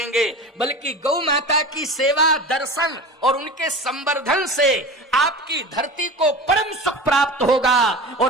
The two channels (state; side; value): normal; both; correlation 0.32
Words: बल्कि गौ माता की सेवा, दर्शन और उनके संवर्धन से आपकी धरती को परम सुख प्राप्त होगा,